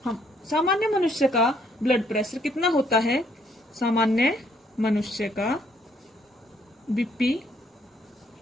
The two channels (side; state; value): both; normal; correlation 0.68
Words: हम सामान्य मनुष्य का ब्लड प्रेशर कितना होता है? सामान्य मनुष्य का बीपी